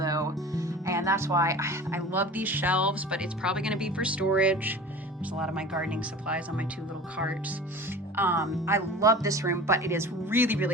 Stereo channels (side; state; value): both; normal; correlation 0.38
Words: and that's why I love these shelves, but it's probably gonna be for storage. There's a lot of my gardening supplies on my 2 little carts. I love this room, but it is really,